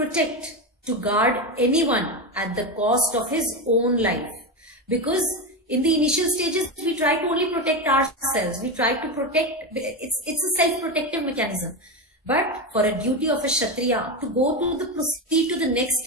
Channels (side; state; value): both; normal; correlation 0.16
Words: to guard anyone at the cost of his own life. Because in the initial stages, we try to only protect ourselves. We try to protect, it's a self-protective mechanism. But for a duty of a Kshatriya to proceed to the next